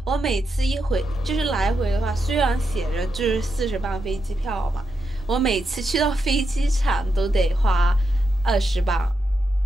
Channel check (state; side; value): normal; both; correlation 0.85